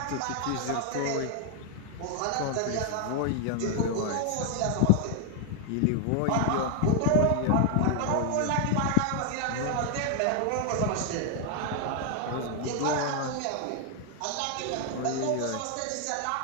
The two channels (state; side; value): different; both; correlation 0.00